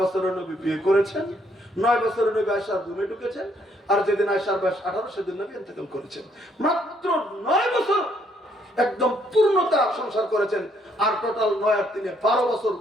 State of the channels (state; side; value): normal; both; correlation 0.69